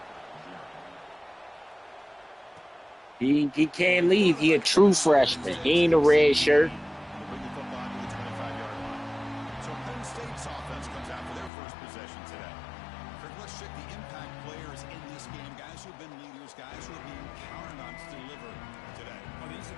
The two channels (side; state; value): right; drops out; at 11.5 s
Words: He can't leave. He a true freshman. He ain't a red shirt. Bring the football to the 25-yard line. So Penn State's offense comes out for their first possession today. Let's check the impact players in this game. Guys who have been leaders, guys who are being counted on to deliver today. Well, these